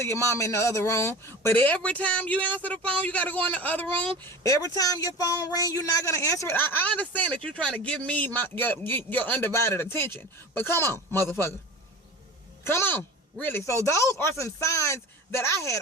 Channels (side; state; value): both; normal; correlation 0.34